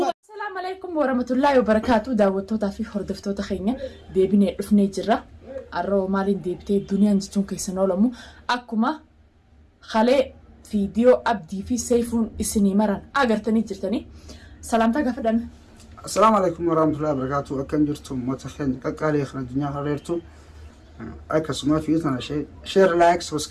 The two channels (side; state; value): both; identical; correlation 1.00